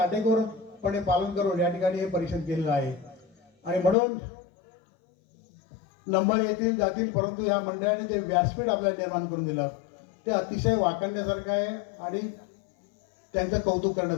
पालन करून या ठिकाणी हे परीक्षण केलेलं आहे. आणि म्हणून नंबर येतील जातील, परंतु या मंडळाने जे व्यासपीठ आपल्याला निर्माण करून दिलं ते अतिशय वाखाणण्यासारखं आहे आणि त्यांचं कौतुक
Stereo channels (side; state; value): right; drops out; at 4.0 s